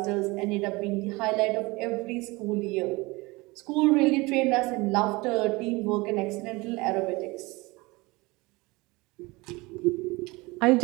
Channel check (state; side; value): quieter; left; 23.6 dB